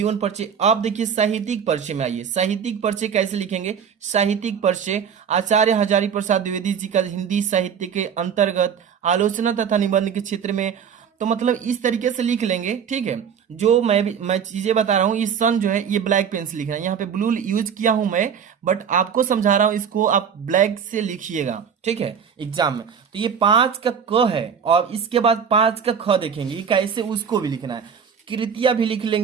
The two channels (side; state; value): left; quieter; 7.3 dB